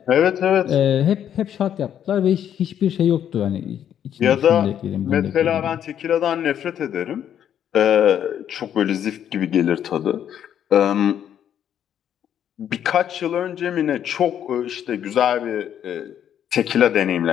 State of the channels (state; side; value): quieter; right; 9.7 dB